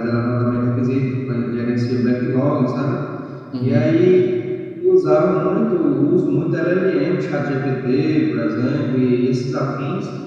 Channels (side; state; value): both; identical; correlation 1.00